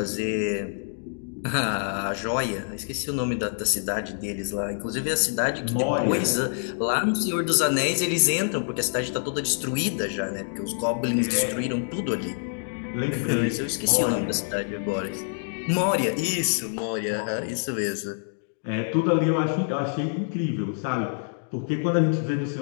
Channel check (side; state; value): right; silent; digital silence